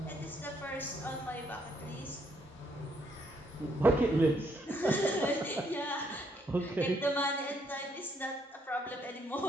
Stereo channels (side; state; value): both; normal; correlation 0.72